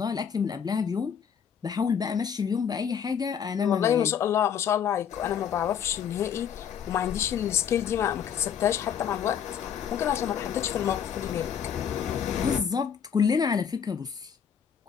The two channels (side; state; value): right; quieter; 8.0 dB